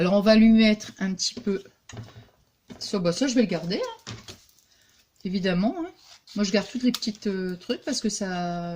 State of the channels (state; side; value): identical; both; correlation 1.00